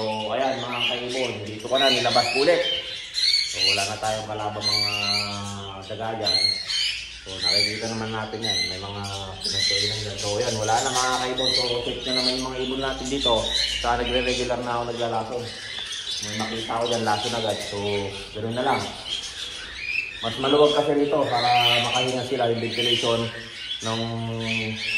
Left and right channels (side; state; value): both; identical; correlation 1.00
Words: ayan mga kaibon, dito ko na nilabas ulit. So wala na tayong kalabang mga daga dyan. So nakikita naman natin yan, may mga pinagkainan dyan. So yan, wala na mga kaibon. So check na naman yung mga ibon natin dito. Saka nagre-regular na ako naglalason. May makita ko dyan, lason agad. So ganoon na lang. Mas maluwag kasi dito para makahinga sila yung ventilation ng